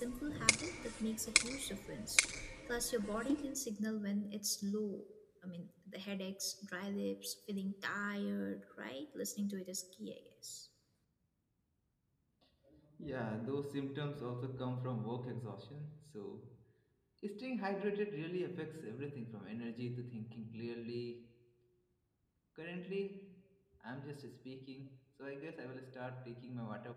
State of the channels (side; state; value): both; identical; correlation 1.00